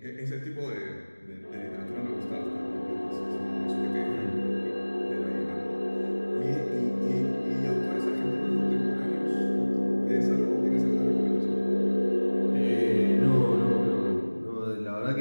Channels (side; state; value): both; inverted; correlation -1.00